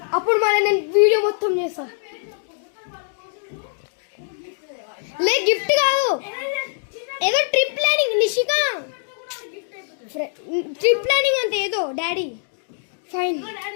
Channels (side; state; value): right; silent; digital silence